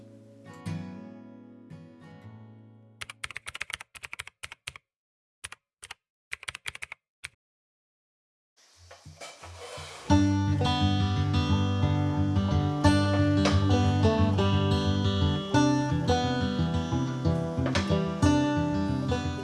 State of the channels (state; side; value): identical; both; correlation 1.00